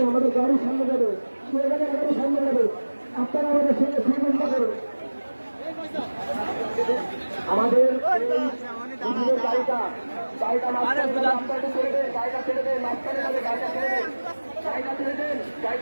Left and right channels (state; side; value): inverted; both; correlation -1.00